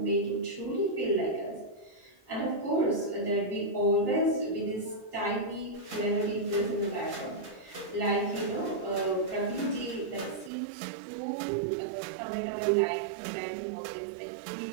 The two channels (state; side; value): drops out; left; at 10.5 s